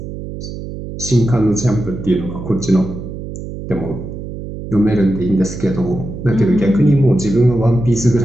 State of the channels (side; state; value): right; noise; hum, 9 dB below the sound